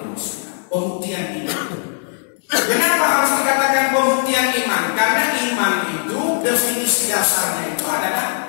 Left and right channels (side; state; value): right; silent; digital silence